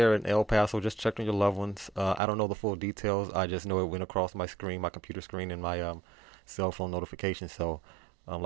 in El Paso, just check on your loved ones. I don't know the full details. I just know it went across my screen, my computer screen, and my cell phone notification. So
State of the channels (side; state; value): left; drops out; at 2.2 s